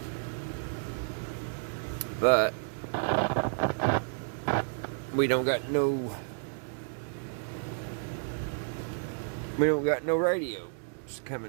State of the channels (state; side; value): silent; left; digital silence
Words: But we don't got no radios